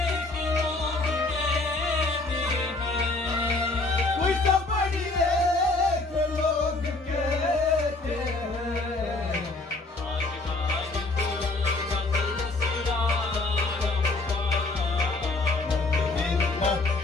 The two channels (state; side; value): quieter; right; 3.2 dB